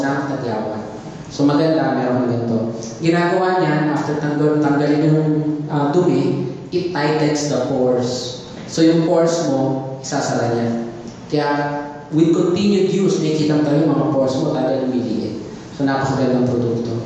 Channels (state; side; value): identical; both; correlation 1.00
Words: tagyawan. So maganda, meron ganito. Ginagawa niyan, after tanggalin yung dumi, it tightens the pores. So yung pores mo, isasara niya. Kaya, with continued use, nakikita mo talaga yung mga pores mo talaga lumiliit. So napakagandang produkto.